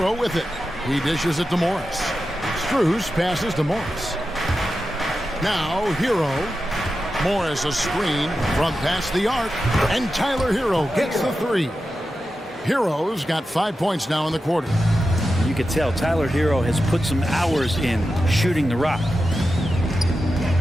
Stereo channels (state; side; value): normal; both; correlation 0.91